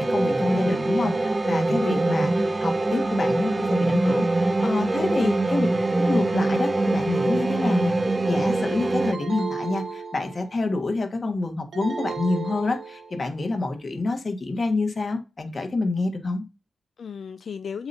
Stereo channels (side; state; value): both; normal; correlation 0.93